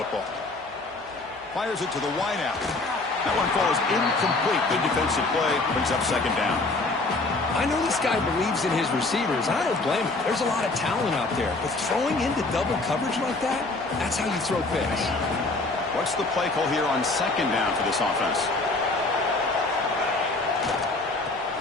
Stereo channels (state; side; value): quieter; right; 3.2 dB